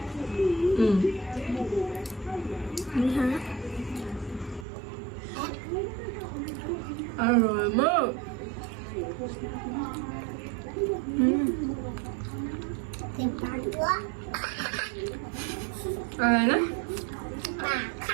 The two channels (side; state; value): left; drops out; at 4.7 s